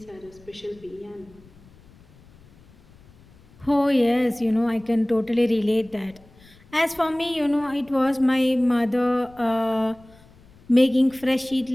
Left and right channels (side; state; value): left; noise; rumble, 26 dB below the sound